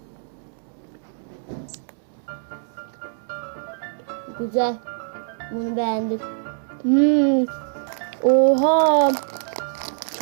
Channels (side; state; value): left; silent; digital silence